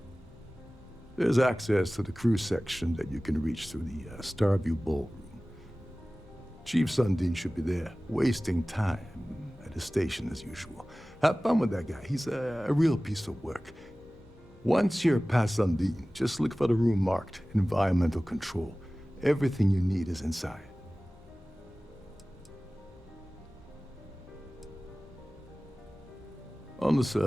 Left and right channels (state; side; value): normal; both; correlation 0.98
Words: There's access to the crew section that you can reach through the Starfield ballroom. Chief Sundin should be there, wasting time at his station as usual. Have fun with that guy. He's a real piece of work. Once you're past Sundin, just look for the room marked Environmental Control. Everything you need is inside. On the